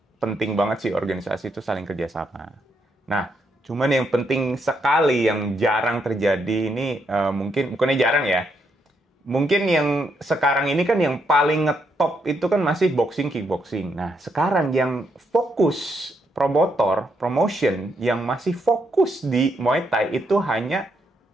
penting banget sih organisasi itu saling kerjasama. Nah, cuman yang penting sekali yang jarang terjadi ini bukannya jarang ya. Mungkin yang sekarang ini kan yang paling ngetop itu kan masih boxing, kickboxing. Nah, sekarang yang fokus promotion yang masih fokus di Muay Thai itu hanya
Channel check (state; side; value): normal; both; correlation 0.77